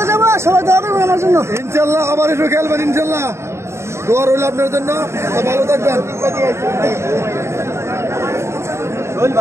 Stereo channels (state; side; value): late; left; 0.13 ms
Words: যাবো সবাই দোয়া করবেন আমার জন্য ইনশাল্লাহ আবার একটু খেলবেন ইনশাল্লাহ দোয়া রইল আপনার জন্য ভালো থাকবেন